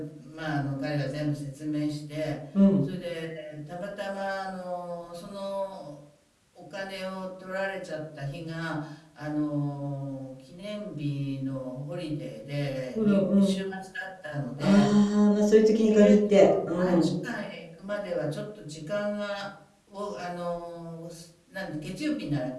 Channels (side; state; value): both; identical; correlation 1.00